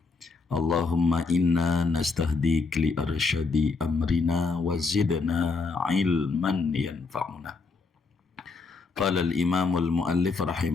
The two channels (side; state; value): right; quieter; 4.2 dB